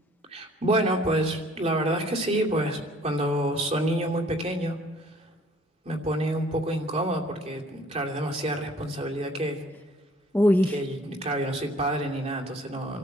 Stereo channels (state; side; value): normal; both; correlation 0.57